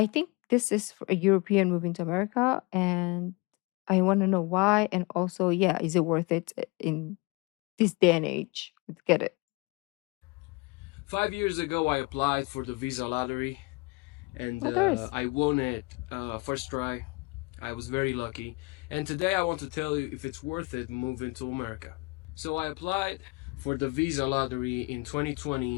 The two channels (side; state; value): right; quieter; 26.7 dB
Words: think this is for a European moving to America, and I want to know why, and also, yeah, is it worth it in this day and age? Let's get it. 5 years ago, I applied for the visa lottery and Oh, there is. I won it first try. I was very lucky. And today, I want to tell you if it's worth it moving to America. So, I applied for the visa lottery in